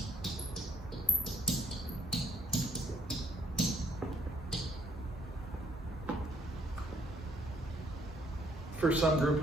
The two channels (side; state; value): both; normal; correlation 0.65